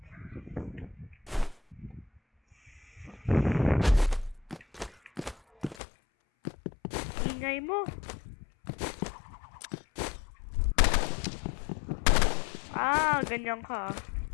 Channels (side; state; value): right; drops out; at 5.8 s